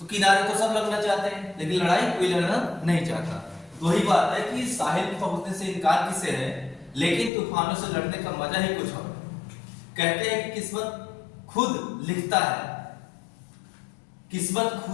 किनारे तो सब लगना चाहते हैं, लेकिन लड़ाई कोई लड़ना नहीं चाहता। वही बात है कि साहिल पे पहुंचने से इनकार किसे है, लेकिन तूफानों से लड़ने का मजा ही कुछ और। कहते हैं कि किस्मत खुद लिखता है, किस्मत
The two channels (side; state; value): right; drops out; at 7.3 s